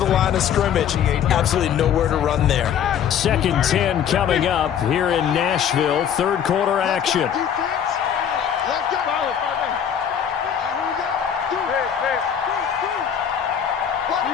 line of scrimmage. Absolutely nowhere to run there. 2nd and 10 coming up here in Nashville. Third quarter action. Let's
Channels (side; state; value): right; quieter; 8.7 dB